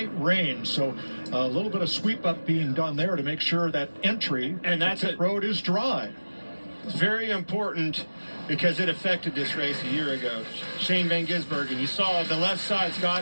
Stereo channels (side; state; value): both; inverted; correlation -1.00